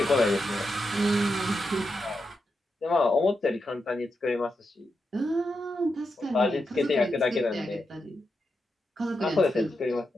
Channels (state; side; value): normal; both; correlation 0.86